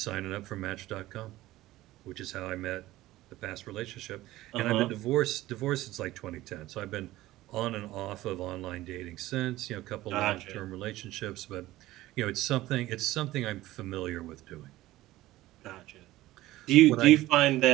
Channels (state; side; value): quieter; left; 16.5 dB